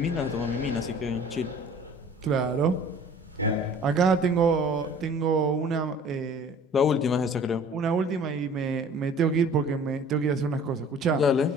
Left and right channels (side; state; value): both; normal; correlation 0.48